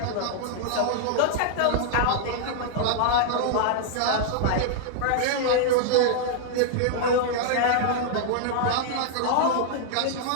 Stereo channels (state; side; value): different; both; correlation -0.01